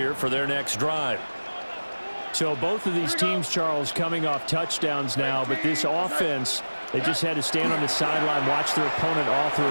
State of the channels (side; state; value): both; inverted; correlation -1.00